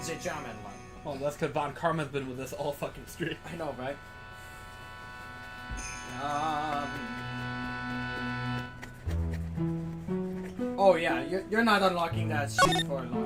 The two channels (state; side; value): identical; both; correlation 1.00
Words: the German one. Well, that's because Von Karma's been with us all fucking stream. I know, right? Oh yeah, you're not unlocking that shit for a